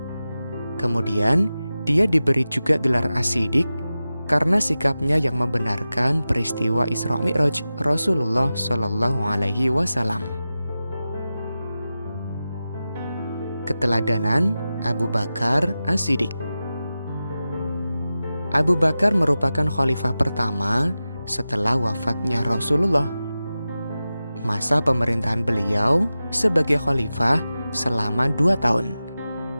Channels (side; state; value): both; inverted; correlation -0.94